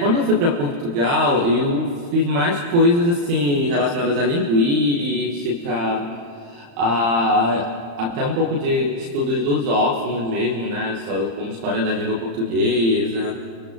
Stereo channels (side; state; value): left; late; 35 ms